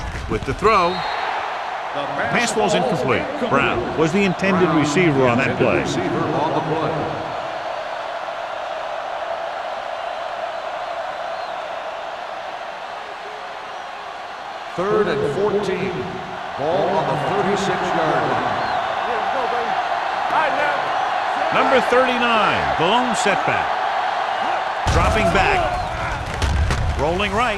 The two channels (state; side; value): identical; both; correlation 1.00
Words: With the throw, pass ball's incomplete. Brown was the intended receiver on that play. Receiver on the play. Third and 14. Ball on the 36-yard line. Number 39, the lone setback. Dropping back. Rolling